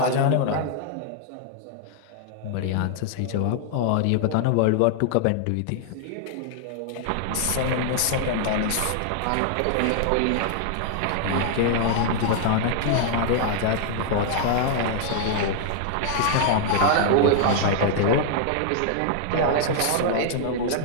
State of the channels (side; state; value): both; different; correlation -0.01